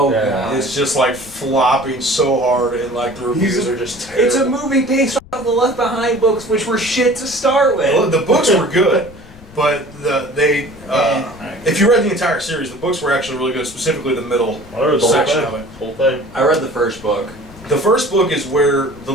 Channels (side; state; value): left; noise; rumble, 21 dB below the sound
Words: Yeah. God. It's just like flopping so hard, and like the reviews are just terrible. It's a movie based on the Left Behind books, which were shit to start with. Well, the books were good, but if you read the entire series, the books were actually really good, specifically the middle I read the whole section thing. of it. Whole thing. I read the first book. The first book is where the